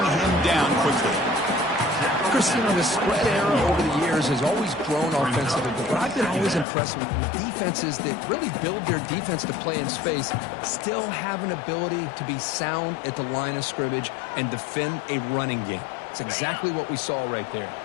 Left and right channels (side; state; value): right; drops out; at 6.7 s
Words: down quickly. Chris, you know, the spread era over the years has always grown offensively, but what I've been always impressed with defenses that really build their defense to play in space still have an ability to be sound at the line of scrimmage and defend a running game. It's exactly what we saw right there.